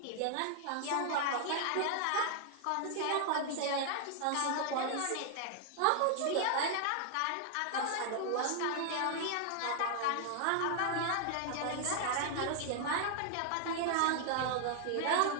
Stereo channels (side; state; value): both; different; correlation 0.00